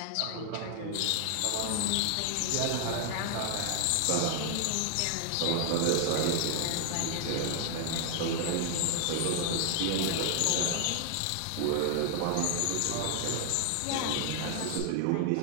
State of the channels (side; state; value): both; different; correlation 0.00